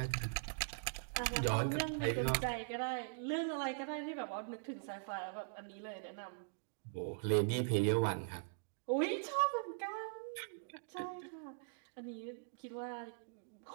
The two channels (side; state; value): left; silent; digital silence